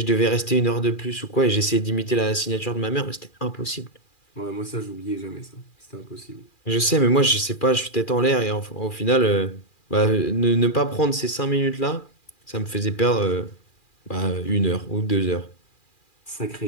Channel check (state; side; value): late; right; 2.4 ms